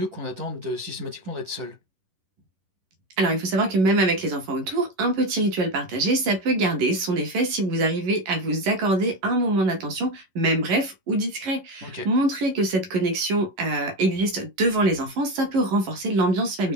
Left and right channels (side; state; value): left; late; 11 ms